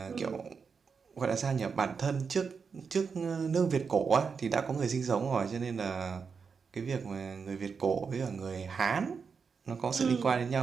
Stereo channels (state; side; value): quieter; left; 5.6 dB